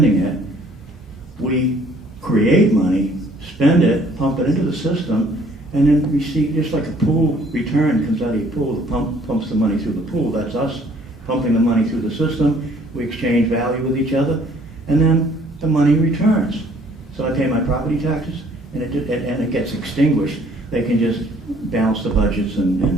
it, we create money, spend it, pump it into the system, and then receive, just like a pool return comes out of your pool, the pump pumps the money through the pool. That's us pumping the money through the system. We exchange value with each other, and then the money returns. So I pay my property taxes, and it gets extinguished. They can just balance the budgets,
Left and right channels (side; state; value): both; normal; correlation 0.59